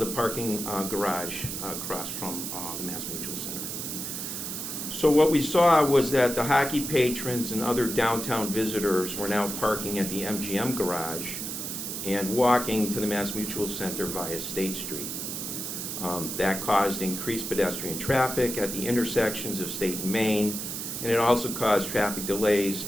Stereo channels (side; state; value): right; noise; hiss, 5 dB below the sound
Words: parking garage across from the MassMutual Center. So what we saw was that the hockey patrons and other downtown visitors were now parking at the MGM garage and walking to the MassMutual Center via State Street. That caused increased pedestrian traffic at the intersections of State and Main, and it also caused traffic delays